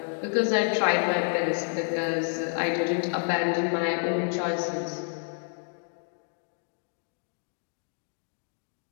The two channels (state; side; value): silent; right; 58 dB below the other